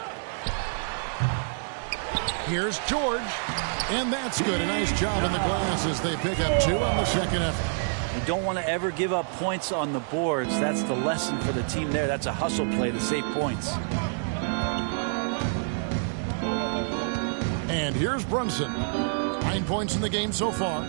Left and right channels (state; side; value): silent; left; digital silence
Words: Here's George. And that's good. A nice job in the glass as they pick up 2 on the second effort. You don't want to ever give up points on the boards. That's the lesson for the team there. That's a hustle play to save points. And here's Brunson. 9 points in the game so far.